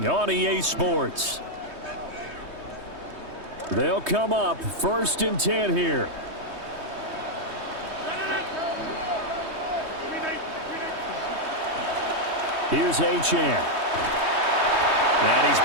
on EA Sports. They'll come up 1st and 10 here. Here's Achane. And he's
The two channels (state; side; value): late; left; 3.2 ms